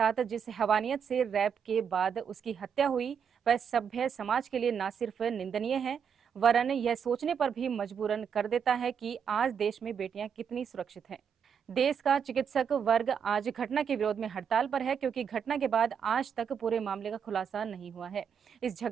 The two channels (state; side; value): quieter; left; 7.2 dB